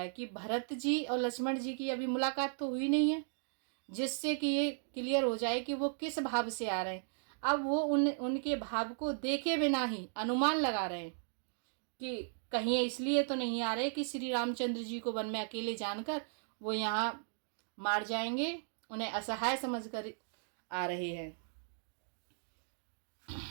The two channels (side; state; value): left; silent; digital silence